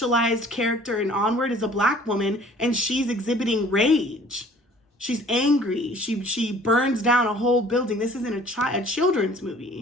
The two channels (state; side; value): normal; both; correlation 0.51